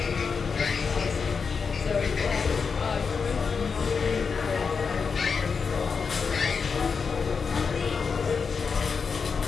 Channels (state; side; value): quieter; right; 5.5 dB